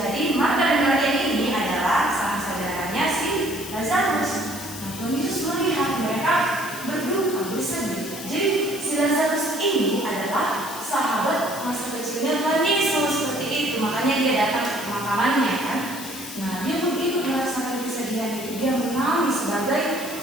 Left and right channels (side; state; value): left; noise; hiss, 11 dB below the sound